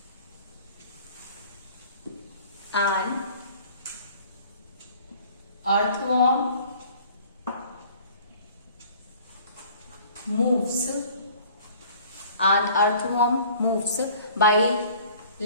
An earthworm moves. An earthworm moves by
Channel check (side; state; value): both; inverted; correlation -0.51